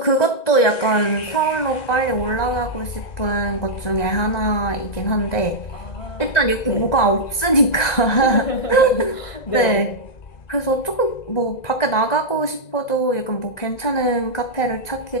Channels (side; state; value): right; late; 1.9 ms